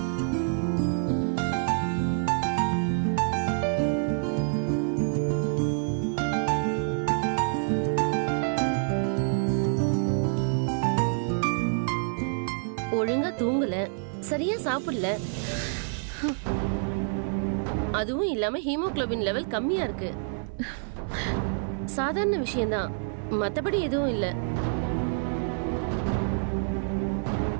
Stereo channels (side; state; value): left; silent; digital silence